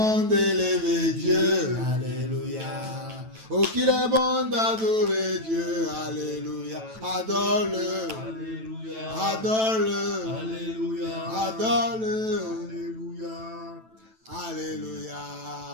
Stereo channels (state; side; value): late; left; 9.1 ms